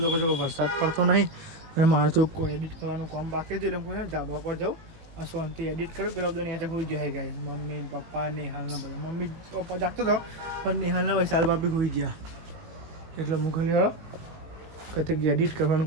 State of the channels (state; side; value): late; left; 18 ms